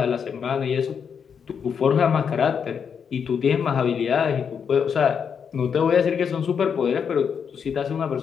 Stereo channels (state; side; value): quieter; right; 6.9 dB